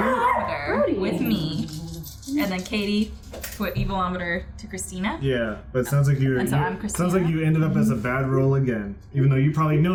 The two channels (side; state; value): both; identical; correlation 1.00